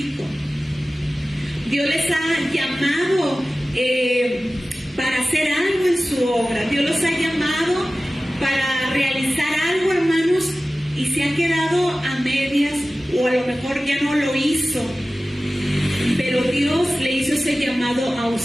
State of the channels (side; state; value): both; normal; correlation 0.96